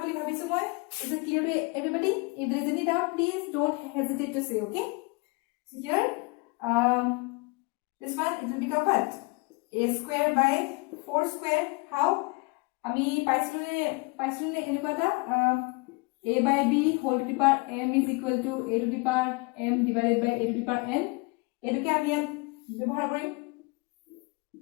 বুলি ভাবিছো মই. is it clear to everybody? if there is any doubt please don't hesitate to say. okay, so here this one it will become what? a square by 4 square. how? আমি পাইছনে এনেকুৱা এটা a by b whole to the power m is equal to a to the power m divided by a to the power n. এটোকে আমি ইয়াত ব্যৱহাৰ কৰিম.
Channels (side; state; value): right; quieter; 28.5 dB